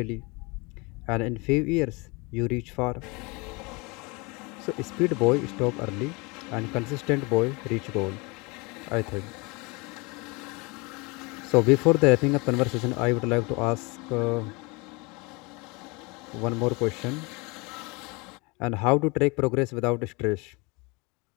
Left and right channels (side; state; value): right; quieter; 27.4 dB